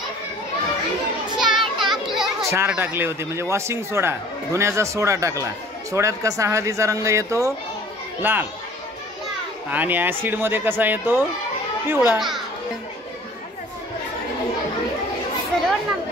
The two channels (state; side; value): normal; both; correlation 0.50